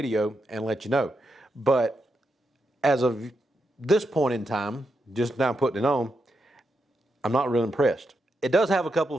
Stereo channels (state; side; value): normal; both; correlation 0.84